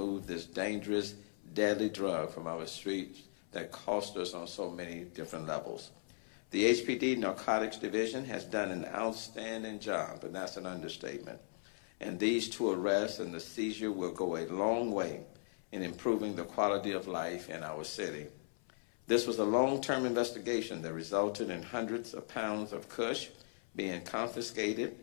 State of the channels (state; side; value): silent; right; 53 dB below the other